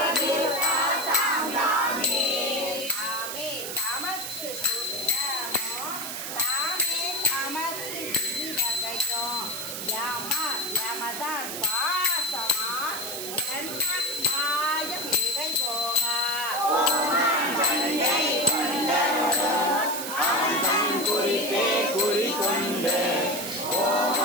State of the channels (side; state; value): right; noise; hiss, 6 dB below the sound